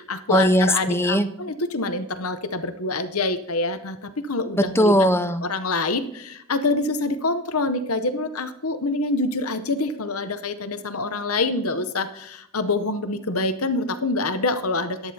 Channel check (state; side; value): normal; both; correlation 0.24